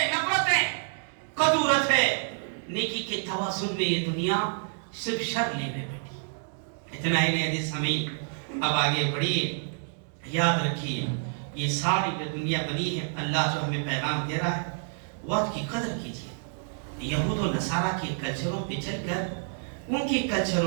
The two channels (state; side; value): silent; left; digital silence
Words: نفرت ہے, قدورت ہے. نیکی کے توازن میں یہ دنیا صرف شر لے میں بیٹھی. اتنا ہی نہیں حدیث سمعین, اب آگے بڑھیے. یاد رکھیے یہ ساری جو دنیا بنی ہے اللہ جو ہمیں پیغام دے رہا ہے وقت کی قدر کیجیے. یہود و نصارہ کے کلچروں پہ چل کر ان کے